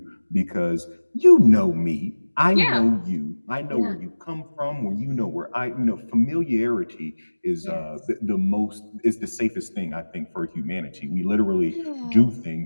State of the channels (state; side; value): inverted; both; correlation -1.00